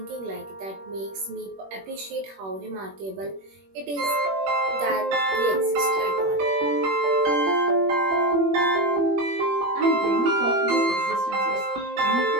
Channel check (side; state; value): left; late; 21 ms